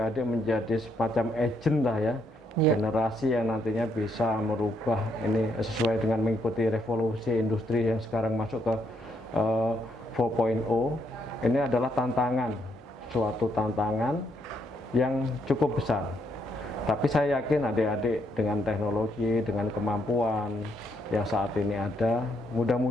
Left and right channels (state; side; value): normal; both; correlation 0.75